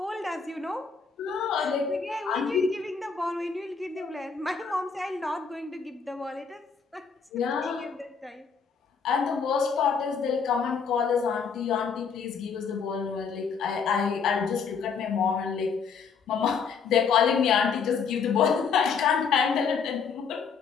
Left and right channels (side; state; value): right; quieter; 5.9 dB